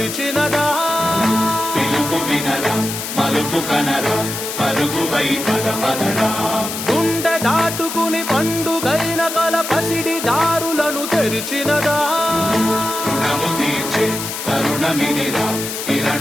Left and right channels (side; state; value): left; noise; hiss, 6 dB below the sound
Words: పిలుపు వినరా మలుపు కనరా పరుగువై పదపదరా గుండె దాటుకుని పండుగైన కల పసిడి దారులను తెరిచినదా రుణము తీర్చే తరుణమినిరా